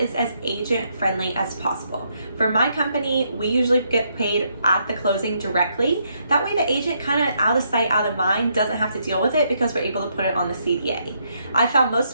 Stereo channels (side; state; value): both; inverted; correlation -0.75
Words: is as agent friendly as possible. For my company, we usually get paid at the closing directly. That way the agent kind of out of sight, out of mind doesn't have to deal with it because we're able to put it on the CDA. I found most